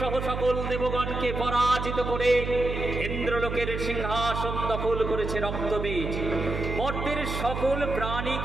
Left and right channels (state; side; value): noise; right; hum, 4 dB below the sound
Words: সহ সকল দেবগণকে পরাজিত করে ইন্দ্রলোকের সিংহাসন দখল করেছে রক্তবীজ। মর্তের সকল প্রাণী